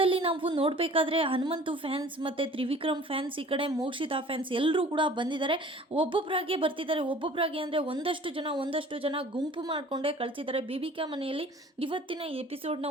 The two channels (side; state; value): both; normal; correlation 0.48